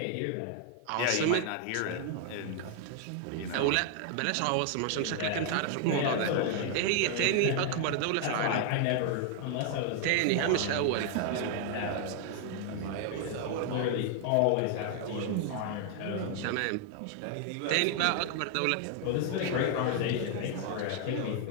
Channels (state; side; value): different; both; correlation 0.00